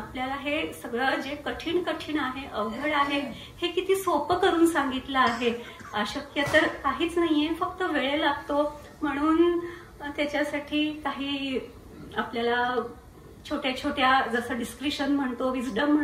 हे सगळं जे कठीण आहे, अवघड आहे, हे किती सोपं करून सांगितलं आहे. अशक्य तर काहीच नाहीये, फक्त वेळ लागतो. म्हणून त्याच्यासाठी काही आपल्याला छोट्या छोट्या, जसं डिस्क्रिशन म्हणतो, विजडम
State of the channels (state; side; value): identical; both; correlation 1.00